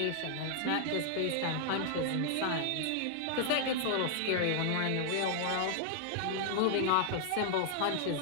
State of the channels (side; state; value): both; different; correlation 0.00